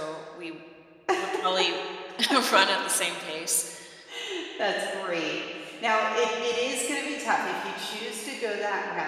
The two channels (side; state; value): both; identical; correlation 1.00